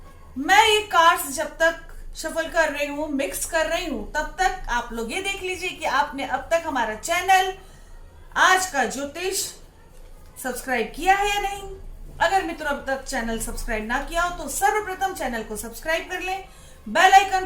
मैं ये कार्ड्स जब तक शफल कर रही हूँ, मिक्स कर रही हूँ, तब तक आप लोग ये देख लीजिए कि आपने अब तक हमारा चैनल आज का ज्योतिष सब्सक्राइब किया है या नहीं। अगर मित्रों अब तक चैनल सब्सक्राइब ना किया हो तो सर्वप्रथम चैनल को सब्सक्राइब कर लें, बेल आइकन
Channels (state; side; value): identical; both; correlation 1.00